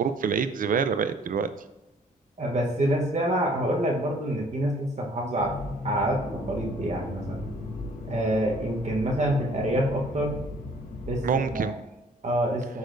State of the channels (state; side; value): normal; both; correlation 0.57